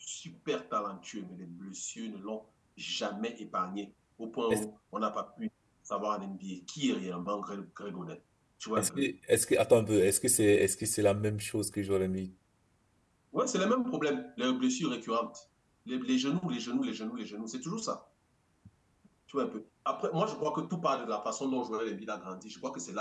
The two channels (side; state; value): both; identical; correlation 1.00